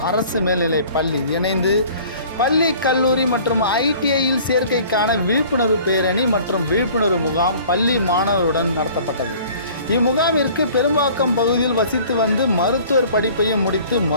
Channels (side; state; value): both; inverted; correlation -0.49